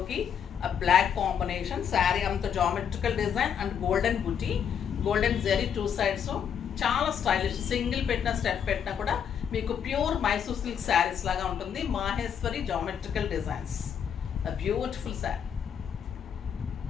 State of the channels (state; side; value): quieter; right; 8.1 dB